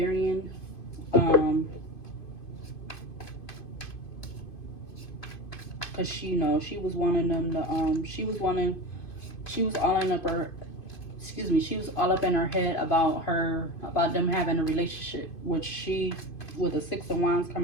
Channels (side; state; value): right; late; 2.5 ms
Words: Because she, you know, she was wanting them to, she was all up in her head about them having a relationship, which she, with the Six of Wands